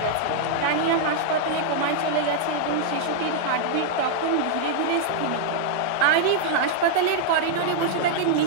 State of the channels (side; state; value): both; different; correlation -0.01